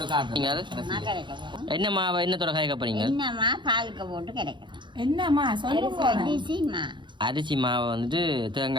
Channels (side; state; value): left; late; 0.23 ms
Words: காட்டுறீங்க என்ன மாவை என்னத்தோட காய்க்க போறீங்க என்னம்மா பாலுக்கு போட்டு கிடைக்கும் என்னம்மா சொல்லுங்க அரிசி மாவை வந்துட்டு